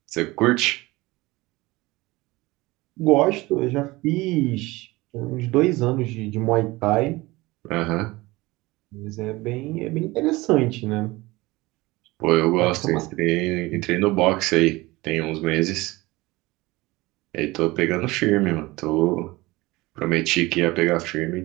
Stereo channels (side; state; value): left; quieter; 20.9 dB